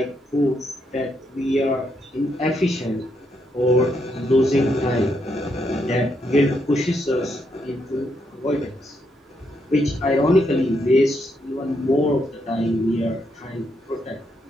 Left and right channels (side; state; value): both; normal; correlation 0.78